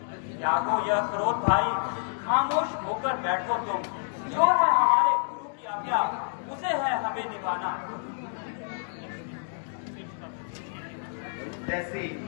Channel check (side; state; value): right; silent; digital silence